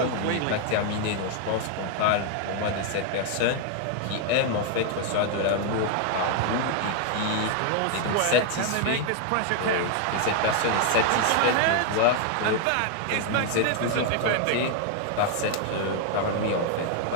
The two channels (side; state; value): both; different; correlation 0.00